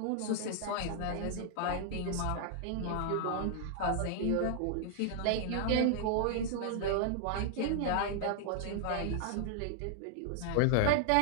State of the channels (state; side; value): different; both; correlation -0.01